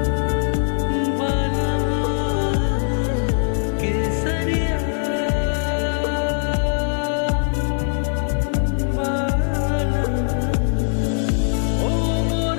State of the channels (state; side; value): silent; right; digital silence